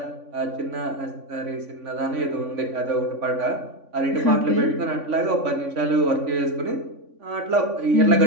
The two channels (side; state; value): left; late; 3.5 ms